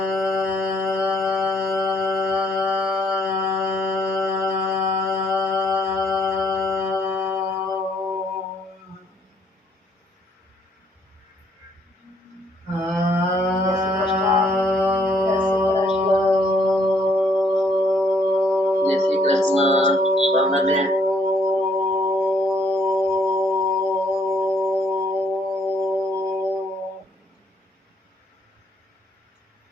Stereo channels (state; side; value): normal; both; correlation 0.67